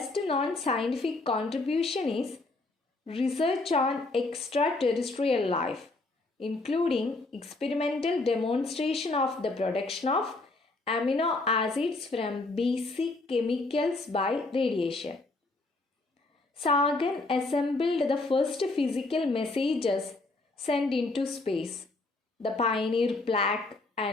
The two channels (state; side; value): quieter; right; 3.1 dB